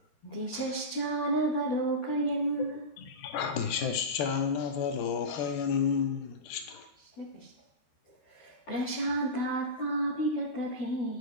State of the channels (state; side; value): late; right; 13 ms